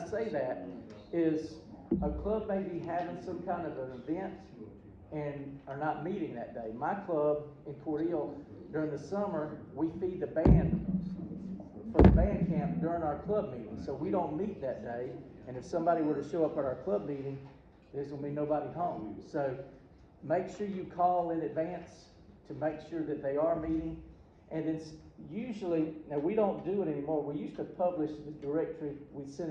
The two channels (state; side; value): identical; both; correlation 1.00